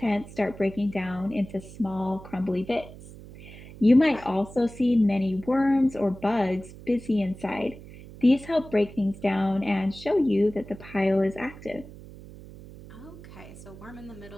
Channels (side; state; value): right; noise; hum, 17 dB below the sound